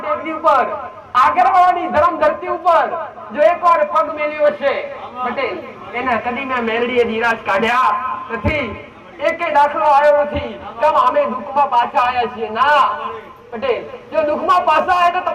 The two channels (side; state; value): both; identical; correlation 1.00